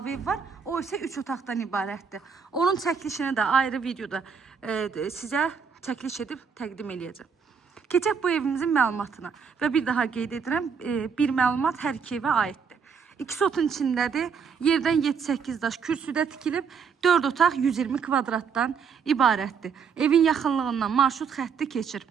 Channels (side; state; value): left; quieter; 6.2 dB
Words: ev var. O isə 3 otaqdan ibarətdir. Onun çəkilişini də ayrı videoda sizə çəkiliş edib təqdim edəcəm. Keçək bu evimizin məlumatına. Və bir daha qeyd edirəm, bir məlumat hər iki evə aiddir. 2 sotun içindədir. Yerdən 7-8 daş kürsüdə tikilib, 4 otaq 120 kvadratdan ibarətdir. Evin yaxınlığından marşrut xətti keçir.